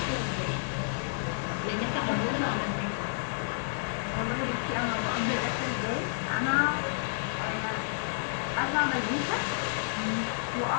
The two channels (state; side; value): silent; right; digital silence